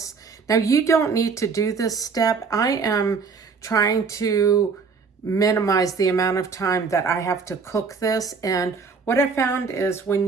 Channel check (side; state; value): left; quieter; 5.1 dB